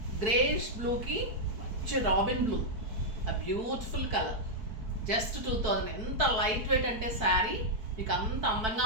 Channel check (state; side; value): late; left; 4.6 ms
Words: greyish బ్లూకి మంచి రాబిన్ బ్లూ, ఆ బ్యూటిఫుల్ కలర్. జస్ట్ 2000. ఎంత లైట్ వెయిట్ అంటే శారీ మీకు అంత అందంగా